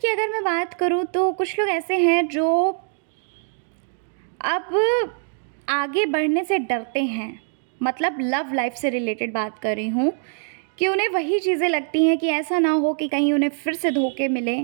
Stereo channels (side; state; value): left; silent; 57 dB below the other